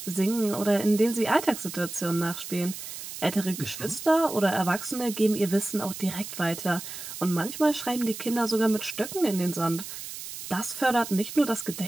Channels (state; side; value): noise; right; hiss, 10 dB below the sound